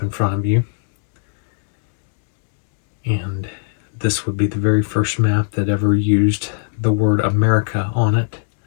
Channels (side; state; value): right; silent; digital silence